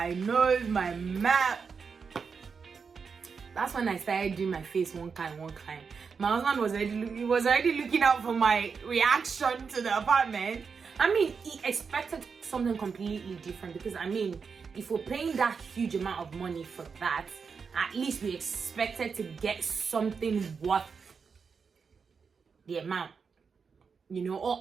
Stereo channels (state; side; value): quieter; left; 5.6 dB